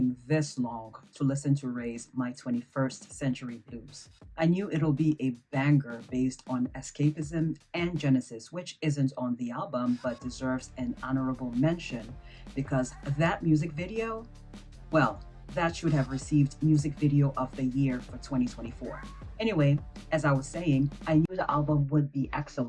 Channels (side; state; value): both; identical; correlation 1.00